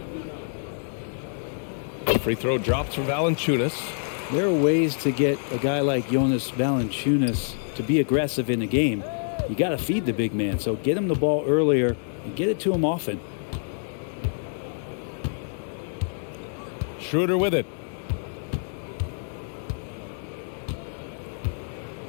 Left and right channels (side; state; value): right; silent; digital silence